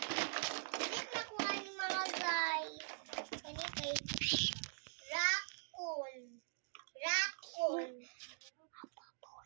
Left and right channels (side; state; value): left; silent; digital silence